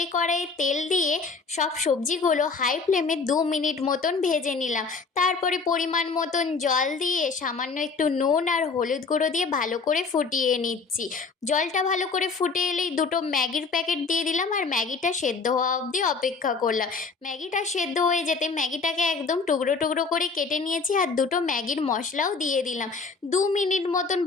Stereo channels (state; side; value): quieter; right; 4.6 dB